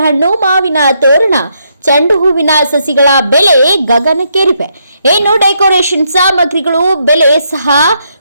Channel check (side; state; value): both; inverted; correlation -0.77